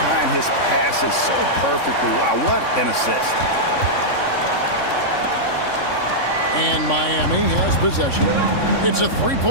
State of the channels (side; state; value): right; late; 3.6 ms